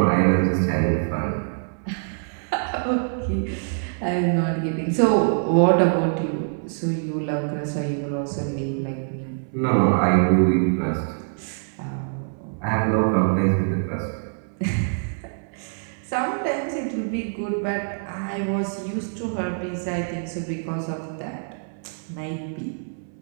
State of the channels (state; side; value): silent; left; 62 dB below the other